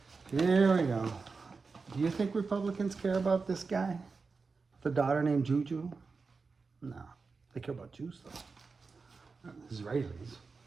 Here we go. Do you think Republicans care about this guy? The daughter named Juju? No. They care about Jews, though. Not Israelis.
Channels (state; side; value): quieter; left; 4.5 dB